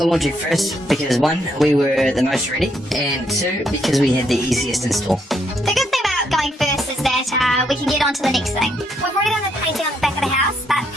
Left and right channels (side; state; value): both; normal; correlation 0.74